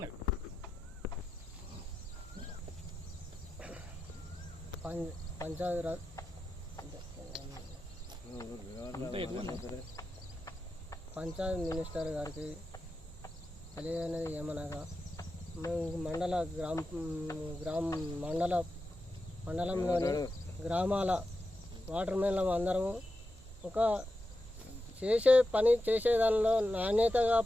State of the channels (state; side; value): normal; both; correlation 0.90